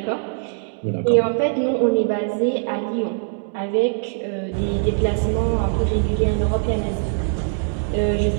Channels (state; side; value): silent; left; digital silence